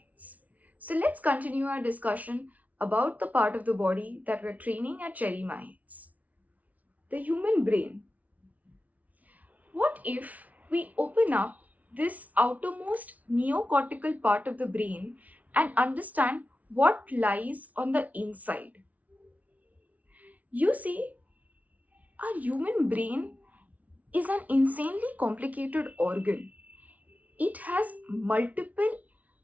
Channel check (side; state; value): left; late; 0.071 ms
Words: So let's continue our discussion about the part of the body that we're training at CherryMinds, the human brain. What if we open up this outermost neocortical part of the brain and understand what lies on the inside? You see, our human brain is an insanely complicated organ. It has multiple